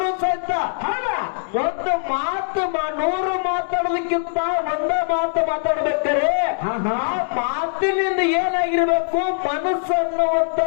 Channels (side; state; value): right; silent; 65 dB below the other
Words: ಸಹಿತ ಒಂದು ಮಾತು 100 ಮಾತಾಡೋದಕ್ಕಿಂತ ಒಂದೇ ಮಾತು ಮಾತಾಡ್ಬೇಕಾರೆ ಆ ಮಾತಿನಿಂದ ಏನಾಗಿರ್ಬೇಕು? ಮನಸ್ಸು